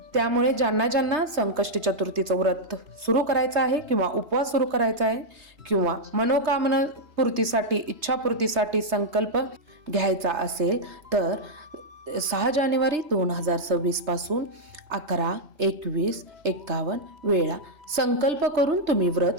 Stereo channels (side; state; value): left; late; 3.3 ms